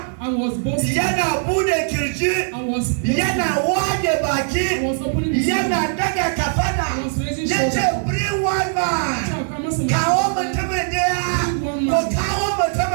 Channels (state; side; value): silent; left; 66 dB below the other